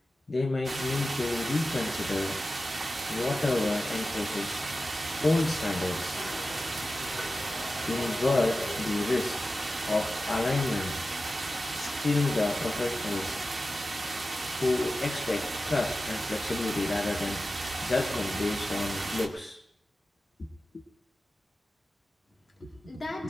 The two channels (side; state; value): both; normal; correlation 0.93